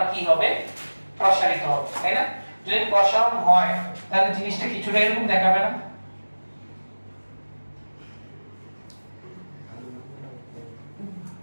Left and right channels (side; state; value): both; inverted; correlation -1.00